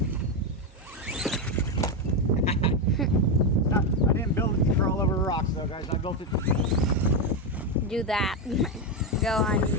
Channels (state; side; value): normal; both; correlation 0.08